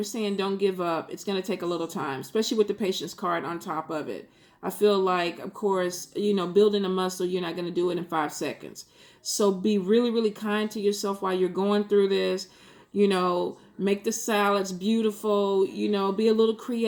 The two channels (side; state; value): both; identical; correlation 1.00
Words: saying don't give up. It's going to take a little time, especially with the patient's card on top of it. I feel like, of course, building a muscle, you're not going to do it in 5 seconds. So be really, really kind to yourself while you're going through this. Make the salads beautiful, be a little